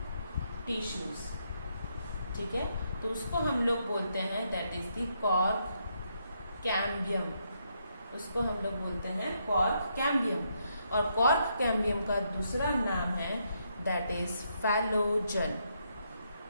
टिश्यूज, ठीक है, तो उसको हम लोग बोलते हैं that is the cork cambium, उसको हम लोग बोलते हैं कॉर्क कैम्बियम। और कॉर्क कैम्बियम का दूसरा नाम है दैट इज फैलोजन,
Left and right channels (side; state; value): both; inverted; correlation -0.77